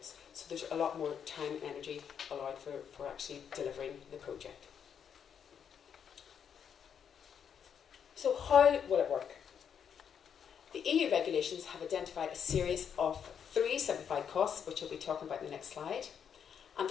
So there's a lot more time and energy allowed for actually delivering the project. So how will it work? The EU regulations have identified a series of 3 simplified costs, which we'll be talking about in the next slide. And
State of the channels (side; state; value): right; quieter; 7.8 dB